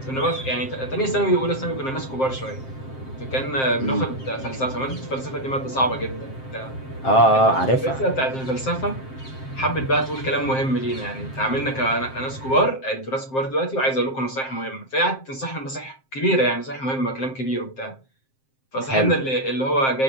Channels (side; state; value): right; late; 7.6 ms